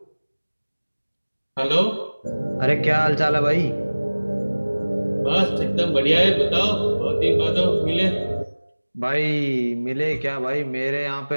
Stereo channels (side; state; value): both; inverted; correlation -1.00